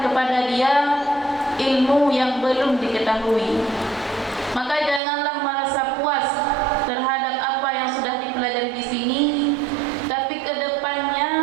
kepada dia ilmu yang belum diketahui. Maka janganlah merasa puas terhadap apa yang sudah dipelajari di sini, tapi ke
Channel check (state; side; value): drops out; left; at 5.0 s